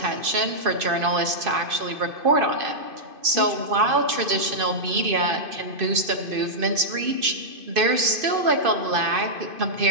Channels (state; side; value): late; left; 2.5 ms